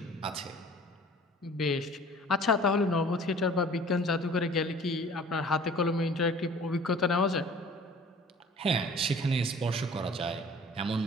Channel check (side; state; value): both; normal; correlation 0.48